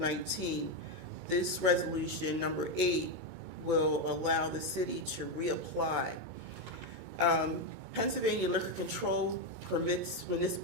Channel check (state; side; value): late; left; 2.2 ms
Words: this resolution, number 8, will allow the city to reapply. Pennsylvania Liquor Control permits